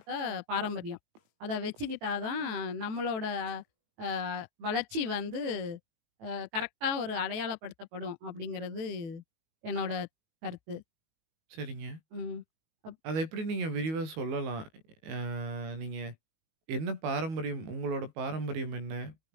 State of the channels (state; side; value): late; left; 18 ms